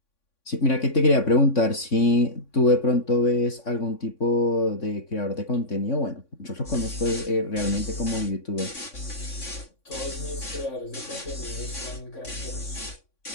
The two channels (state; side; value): late; right; 3.6 ms